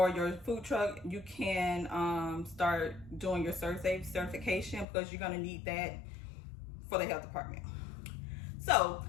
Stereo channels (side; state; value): right; drops out; at 4.9 s